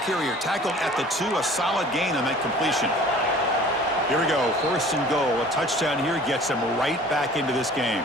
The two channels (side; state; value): both; normal; correlation 0.48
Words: carrier tackled at the 2, a solid gain on that completion. Here we go, 1st and goal. A touchdown here gets him right back into this game.